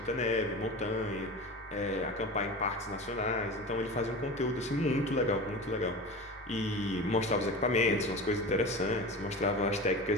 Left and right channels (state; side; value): normal; both; correlation 0.30